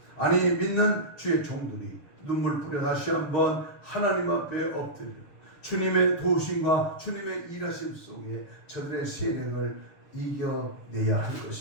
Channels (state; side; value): late; right; 6.8 ms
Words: 아니 믿는 주의 종들이 눈물 뿌려 다시 한번 하나님 앞에 엎드려 주님의 도우심과 주님의 일하심 속에 저들의 세력을 이겨내야 할